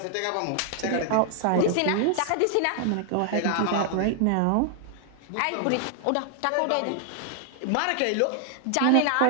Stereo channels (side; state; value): both; different; correlation 0.00